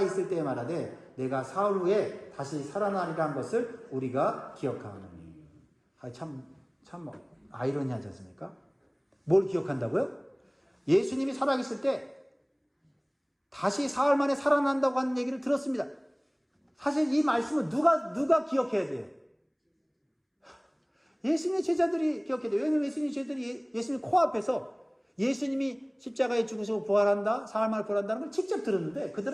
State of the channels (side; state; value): both; identical; correlation 1.00